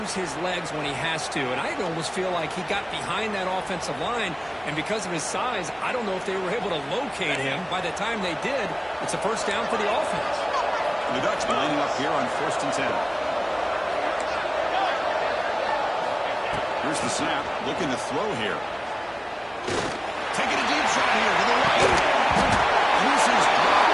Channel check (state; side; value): identical; both; correlation 1.00